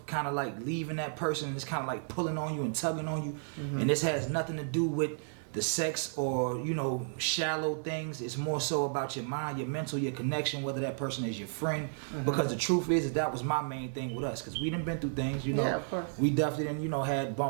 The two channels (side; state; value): left; silent; digital silence